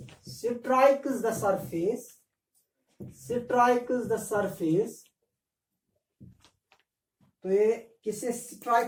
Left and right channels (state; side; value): identical; both; correlation 1.00